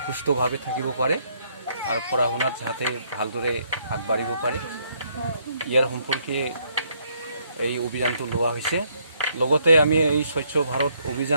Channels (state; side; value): inverted; both; correlation -0.70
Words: সুস্থভাৱে থাকিব পাৰে আৰু পঢ়া শুনাত যাতে ভালদৰে আগবাঢ়িব পাৰে, ইয়াৰ সম্পৰ্কে এই অভিযানটো লোৱা হৈছে। লগতে আমি এই স্বচ্ছ ভাৰত